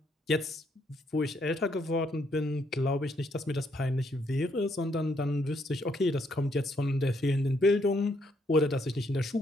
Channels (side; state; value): both; normal; correlation 0.73